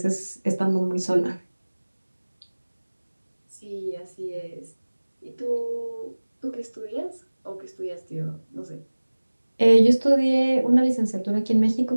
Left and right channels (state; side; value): inverted; both; correlation -1.00